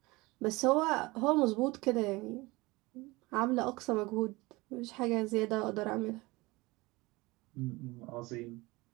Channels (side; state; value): left; quieter; 22.4 dB